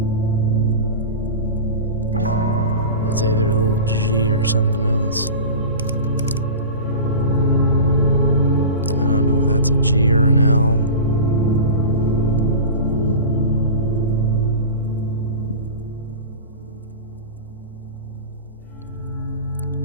that's either a little G or something else. I don't know if that's a G or an L.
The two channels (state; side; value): inverted; both; correlation -0.31